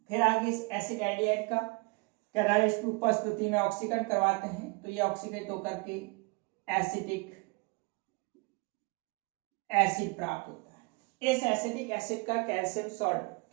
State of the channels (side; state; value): left; quieter; 28.6 dB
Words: फिर आगे इस एसिड एल्डिहाइड का कैटालिस्ट की उपस्थिति में ऑक्सीकरण करवाते हैं तो ये ऑक्सीकृत होकर के एसिटिक एसिड प्राप्त होता है। इस एसिटिक एसिड का कैल्शियम सॉल्ट